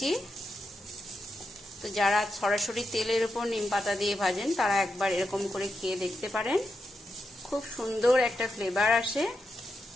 তো যারা সরাসরি তেলের উপর নিম পাতা দিয়ে ভাজেন তারা একবার এরকম করে খেয়ে দেখতে পারেন, খুব সুন্দর একটা ফ্লেভার আসে।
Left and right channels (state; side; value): normal; both; correlation 0.87